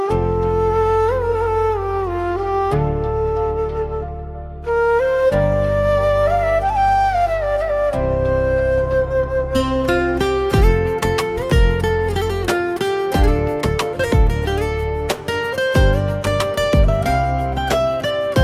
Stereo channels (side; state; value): both; identical; correlation 1.00